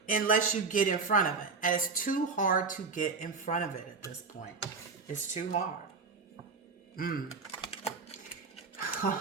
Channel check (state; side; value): quieter; left; 4.7 dB